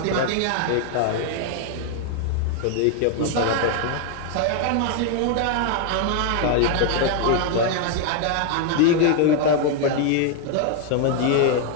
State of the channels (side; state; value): both; different; correlation 0.00